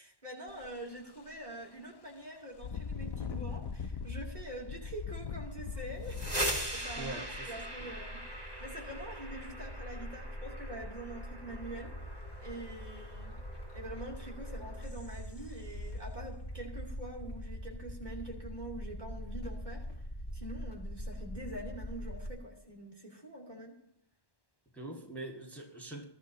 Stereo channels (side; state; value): right; late; 1.1 ms